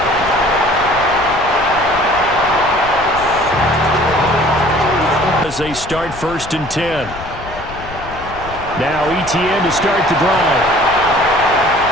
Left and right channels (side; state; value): left; noise; rumble, 14 dB below the sound